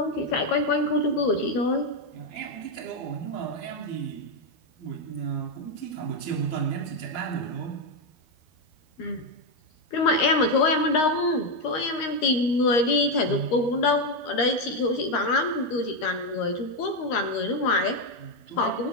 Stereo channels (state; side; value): late; right; 13 ms